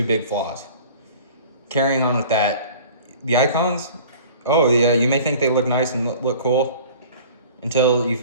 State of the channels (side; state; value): both; inverted; correlation -0.44